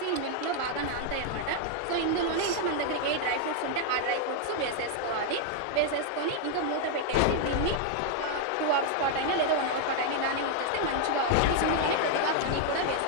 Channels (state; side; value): different; both; correlation 0.00